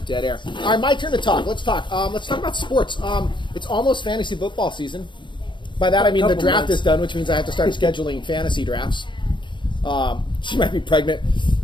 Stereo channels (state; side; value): late; right; 0.23 ms